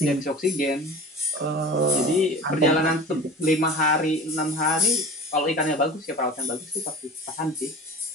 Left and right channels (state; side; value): normal; both; correlation 0.37